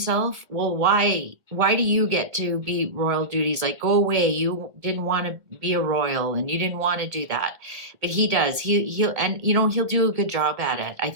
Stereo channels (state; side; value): late; left; 1.7 ms